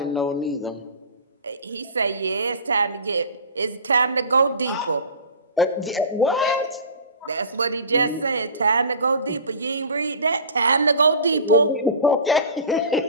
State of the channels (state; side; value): inverted; both; correlation -0.36